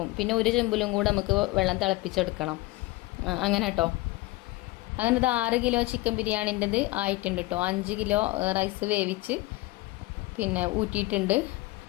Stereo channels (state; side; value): quieter; right; 20.5 dB